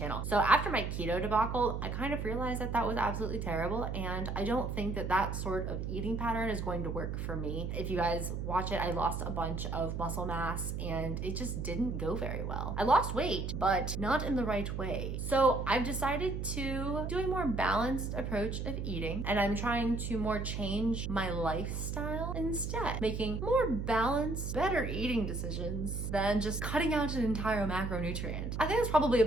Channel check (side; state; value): right; noise; hum, 3 dB below the sound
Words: So after my keto debacle, I kind of realized that that was absolutely terrible, and I don't think that that sort of eating pattern is going to work for me. If you guys watch it, I lost a bunch of muscle mass and it just didn't go very well. I lost weight, but not in the right way. So I've decided to do a more balanced approach of eating, and I'm trying to more change my lifestyle instead, making more balanced, better eating decisions than just cutting out an entire macronutrient. I think that's probably a